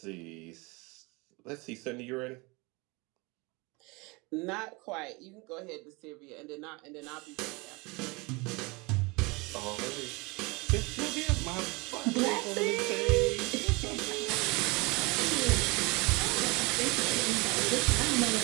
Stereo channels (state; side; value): quieter; left; 26.5 dB